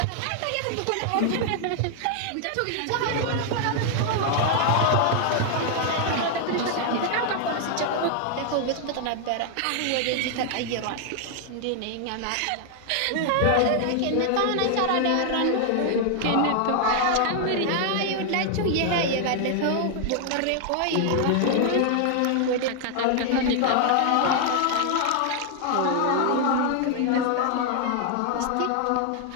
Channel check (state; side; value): different; both; correlation 0.00